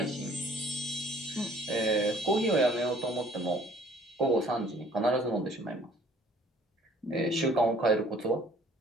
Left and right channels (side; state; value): both; normal; correlation 0.56